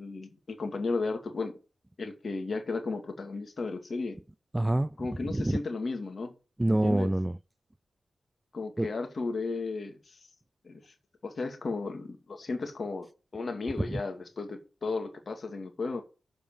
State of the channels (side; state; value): both; normal; correlation 0.95